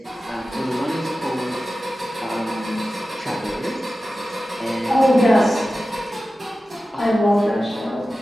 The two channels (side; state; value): both; normal; correlation 0.94